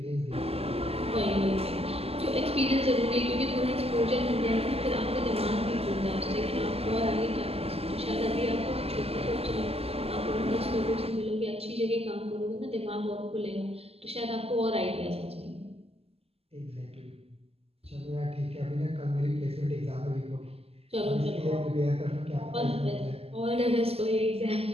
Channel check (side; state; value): left; late; 0.29 ms